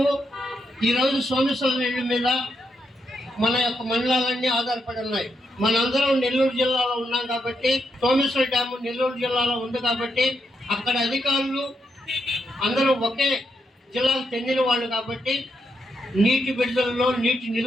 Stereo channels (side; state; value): both; normal; correlation 0.81